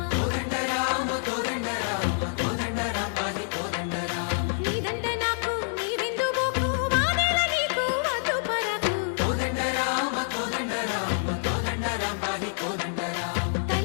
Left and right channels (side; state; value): right; silent; digital silence